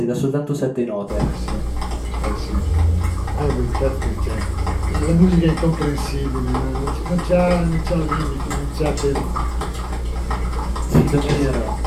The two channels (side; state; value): both; identical; correlation 1.00